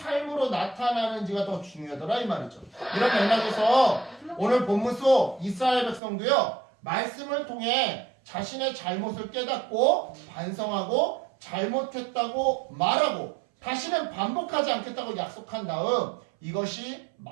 나타나는지가 더 중요하더라 이 말이죠. 이런 맥락에서 오늘 본문 속 이스라엘 백성도요 말씀을 통해 자신의 잘못을 깨닫고 반성하고 잘못했다고 말하고 다시는 반복하지 않겠다고 약속한 다음 이것이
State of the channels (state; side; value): drops out; left; at 6.0 s